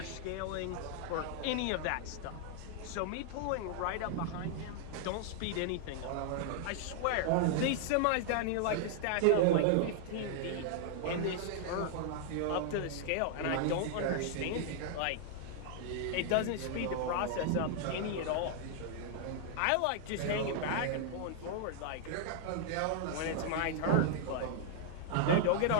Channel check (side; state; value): both; different; correlation 0.00